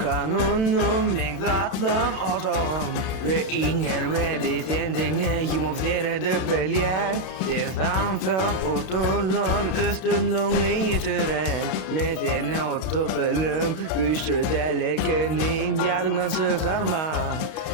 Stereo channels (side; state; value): right; late; 31 ms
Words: men zatlım otağım. Ve inger ve de sendine yumup seyredip belyen. Sen samsın oturlan üstünlüğünü yitiren. Men seni otup elim güçlü delekenin yadından çıkarma.